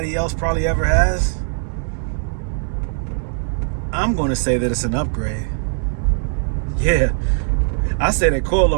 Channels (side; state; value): left; silent; 66 dB below the other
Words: else probably ever has. I'm going to say that it's an upgrade. Yeah, I say that